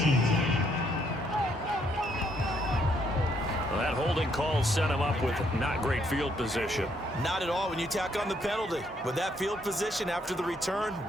Well, that holding call set him up with not great field position. Not at all when you tack on the penalty. With that field position after the return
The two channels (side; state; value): both; normal; correlation 0.71